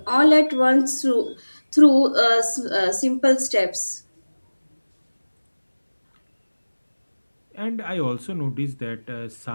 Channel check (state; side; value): inverted; both; correlation -1.00